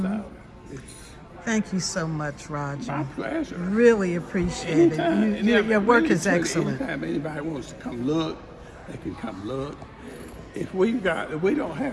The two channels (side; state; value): both; identical; correlation 1.00